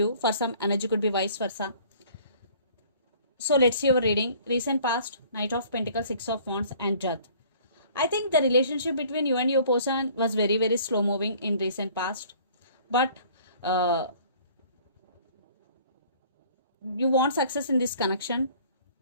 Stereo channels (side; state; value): both; inverted; correlation -0.53